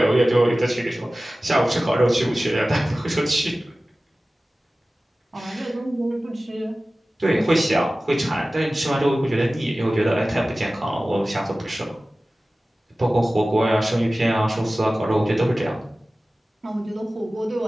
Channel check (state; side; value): normal; both; correlation 0.96